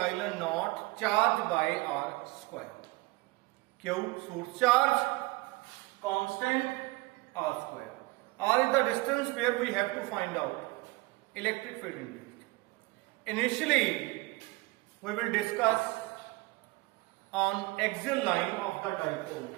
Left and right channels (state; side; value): quieter; left; 22.4 dB